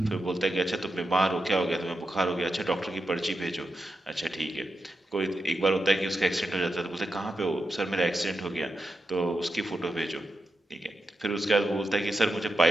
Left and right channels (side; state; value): both; normal; correlation 0.88